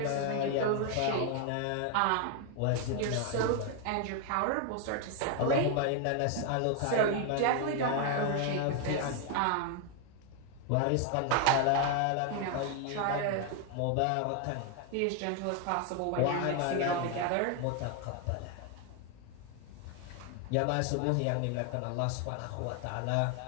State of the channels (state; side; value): different; both; correlation 0.01